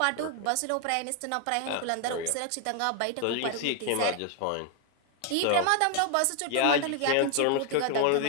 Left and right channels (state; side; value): different; both; correlation 0.00